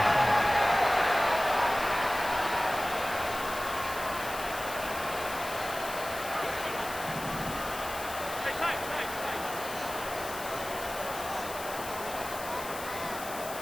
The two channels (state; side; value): noise; left; hiss, 11 dB below the sound